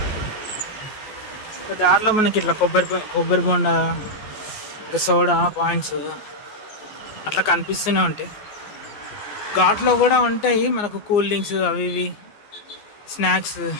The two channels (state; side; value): late; right; 14 ms